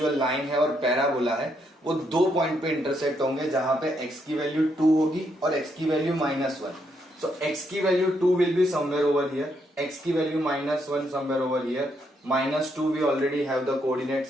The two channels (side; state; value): both; normal; correlation 0.76